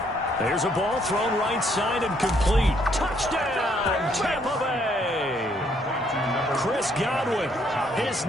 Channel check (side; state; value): both; normal; correlation 0.69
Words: There's a ball thrown right side and complete. Touchdown, Tampa Bay. Chris Godwin, his